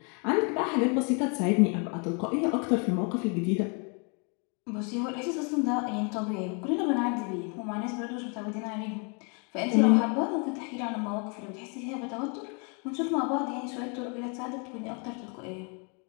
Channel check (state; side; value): quieter; right; 35.5 dB